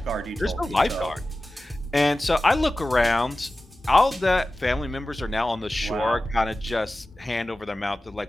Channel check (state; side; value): normal; both; correlation 0.95